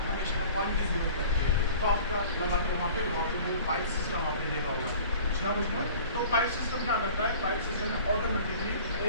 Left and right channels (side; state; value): both; inverted; correlation -0.45